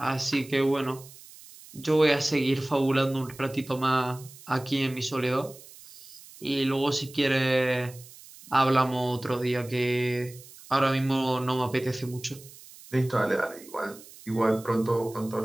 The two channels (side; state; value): right; noise; hiss, 20 dB below the sound